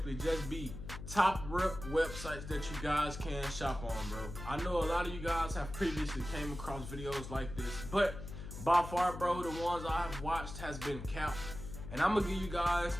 just be top rep websites that you guys can shop on, bro. I know a lot of you guys have previously came across videos like this, but by far, bro, the ones I have watched has been capped. And I'm gonna give you guys,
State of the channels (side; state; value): left; noise; hum, 10 dB below the sound